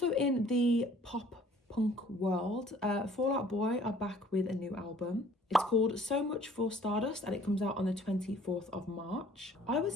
in the pop punk world, Fall Out Boy are back with a new album. It's called So Much for Stardust and it comes out on the 24th of March. I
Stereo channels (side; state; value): both; normal; correlation 0.55